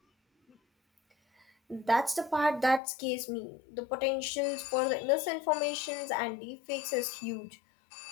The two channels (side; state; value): right; drops out; at 2.8 s